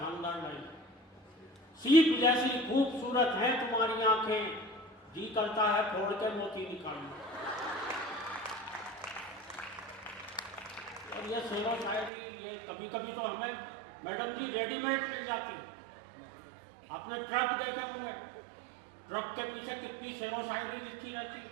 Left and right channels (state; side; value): drops out; left; at 12.1 s